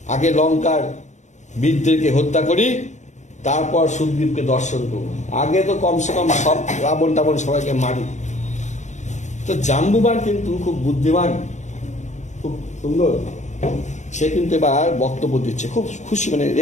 আগে লঙ্কার বীরদেরকে হত্যা করি, তারপর সুগ্রীবকে দর্শন করবো। আগে তো কমসে কম সব রাবণ টাবণ সবাইকে মারি। তো জাম্বুবান কিন্তু খুব বুদ্ধিমান, খুব সুন্দর। সে কিন্তু এবার বক্তব্য দিচ্ছে, খুব খুশি, মানে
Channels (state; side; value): late; right; 0.34 ms